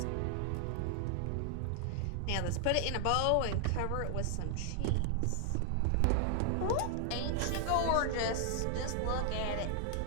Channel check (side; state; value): both; different; correlation 0.00